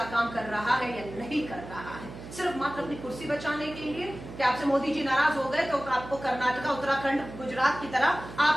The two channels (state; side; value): noise; right; hum, 13 dB below the sound